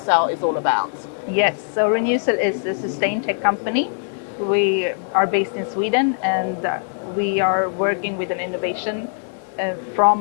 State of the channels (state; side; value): silent; right; digital silence